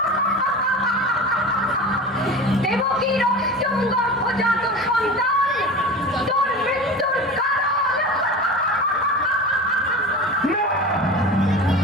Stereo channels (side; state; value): both; normal; correlation 0.32